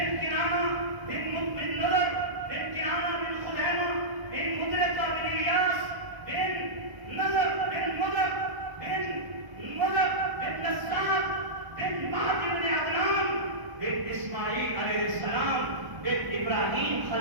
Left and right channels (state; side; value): late; left; 1.0 ms